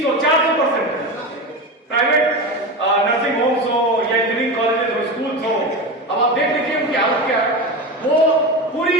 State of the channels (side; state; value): both; normal; correlation 0.23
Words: है। प्राइवेट नर्सिंग होम्स हो या इंजीनियरिंग कॉलेजेस हो, स्कूल हो, अब आप देख लीजिए उनकी हालत क्या है। वो पूरी